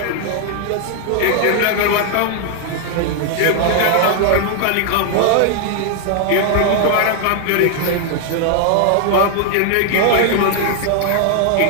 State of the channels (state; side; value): different; both; correlation 0.00